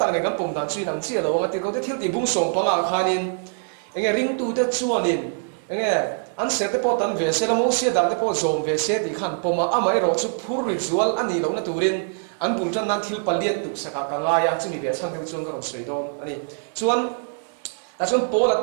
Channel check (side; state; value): left; silent; 63 dB below the other